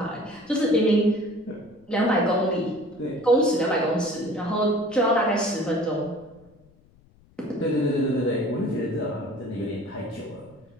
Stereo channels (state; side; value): noise; left; rumble, 29 dB below the sound